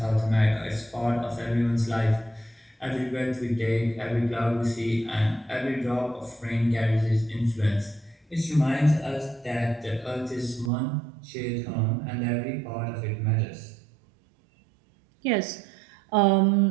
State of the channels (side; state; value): left; drops out; at 10.7 s